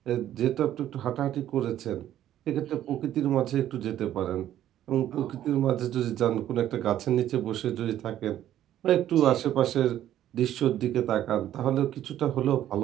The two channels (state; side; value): quieter; left; 12.0 dB